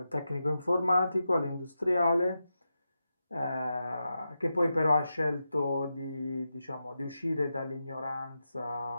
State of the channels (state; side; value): inverted; both; correlation -0.89